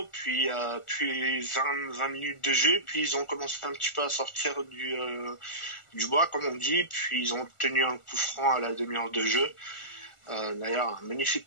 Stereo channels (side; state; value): right; late; 1.4 ms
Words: puis 20 minutes de jeu, puis ils ont commencé un petit peu à sortir du bois, comme on dit, puis ils ont obtenu un coup franc à la demi-heure de jeu. D'ailleurs, un magnifique